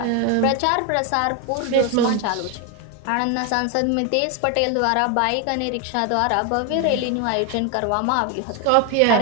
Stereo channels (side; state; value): both; different; correlation 0.01